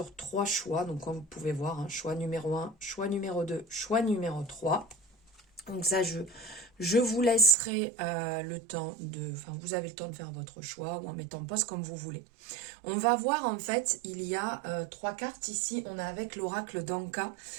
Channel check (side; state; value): left; drops out; at 7.6 s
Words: 3 choix, donc comme vous pouvez voir, choix numéro 1, choix numéro 2, choix numéro 3. Donc ça, je vous laisserai le temps de... Enfin, vous avez le temps de faire votre choix ou en mettant pause comme vous voulez. On va voir, en fait, il y a 3 cartes ici. On a avec l'oracle d'Anka.